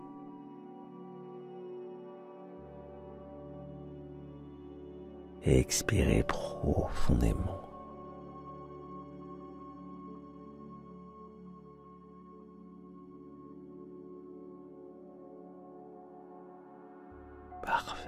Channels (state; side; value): identical; both; correlation 1.00